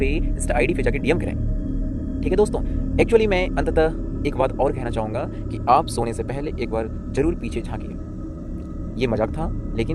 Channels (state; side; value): identical; both; correlation 1.00